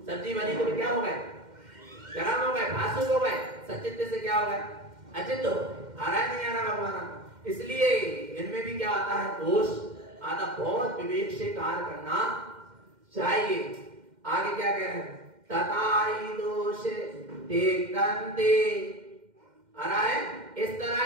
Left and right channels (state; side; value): late; left; 2.1 ms